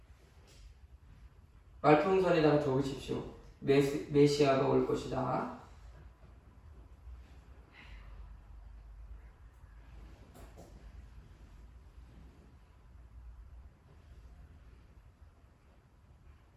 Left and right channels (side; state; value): both; identical; correlation 1.00